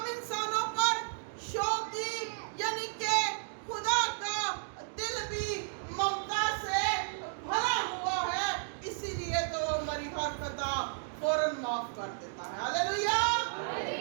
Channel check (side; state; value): left; silent; digital silence